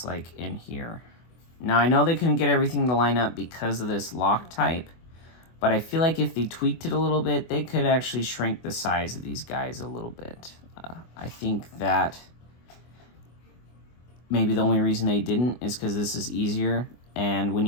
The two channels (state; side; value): late; right; 24 ms